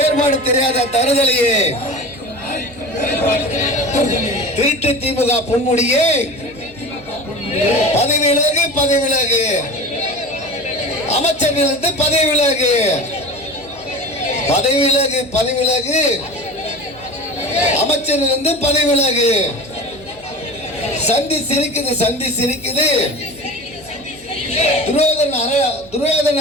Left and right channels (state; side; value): noise; right; hum, 24 dB below the sound